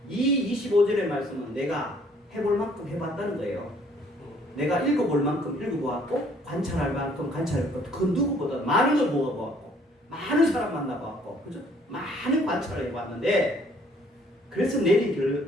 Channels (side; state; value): both; normal; correlation 0.61